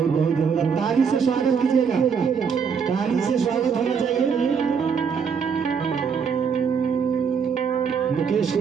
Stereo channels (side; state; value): left; quieter; 6.4 dB